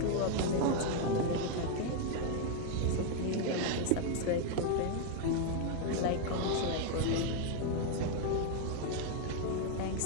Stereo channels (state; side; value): different; both; correlation 0.00